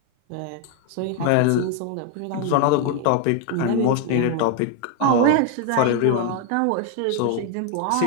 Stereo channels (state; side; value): different; both; correlation 0.01